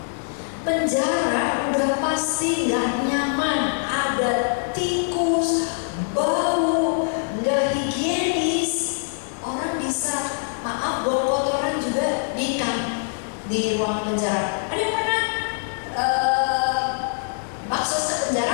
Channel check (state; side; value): silent; right; digital silence